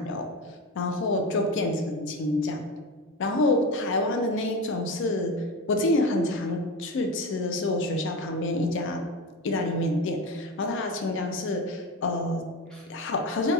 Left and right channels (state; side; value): normal; both; correlation 0.23